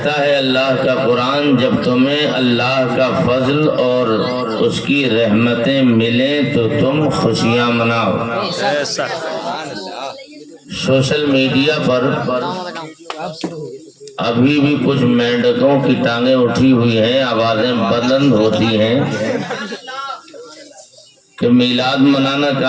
ہے اللہ کا قرآن جب تمہیں اللہ کا فضل اور اس کی رحمتیں ملیں تو تم خوشیاں مناؤ. سوشل میڈیا پر ابھی بھی کچھ مینڈکوں کی ٹانگیں اٹھی ہوئی ہیں، آوازیں بلند ہوتی ہیں کہ میلاد منانا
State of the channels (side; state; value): both; identical; correlation 1.00